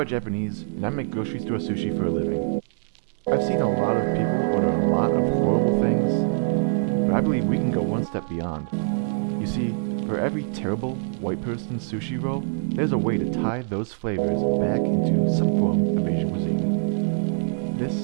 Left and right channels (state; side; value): silent; left; digital silence